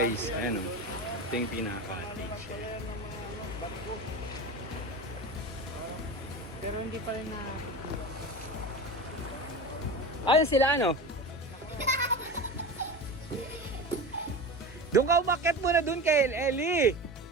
Ayan o. Ito yung pinaka-cottage. Barko. Pero hindi pa rin na... Ayan sila ano? Doon ka umakyat muna doon kay Ellie.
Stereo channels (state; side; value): normal; both; correlation 0.28